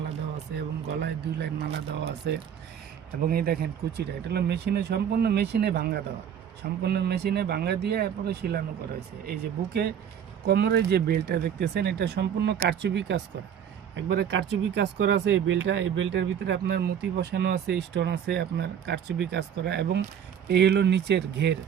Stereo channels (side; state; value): left; quieter; 8.7 dB